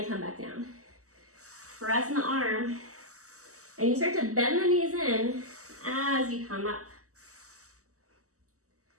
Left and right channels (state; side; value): late; left; 0.65 ms